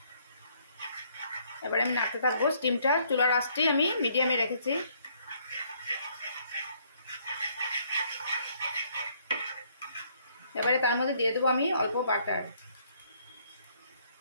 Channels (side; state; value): both; inverted; correlation -0.66